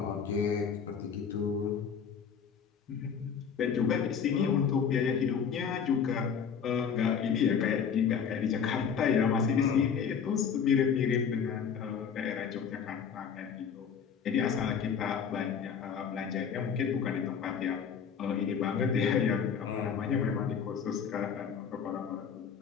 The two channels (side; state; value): right; quieter; 7.0 dB